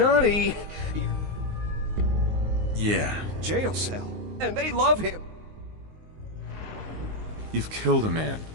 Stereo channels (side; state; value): left; late; 19 ms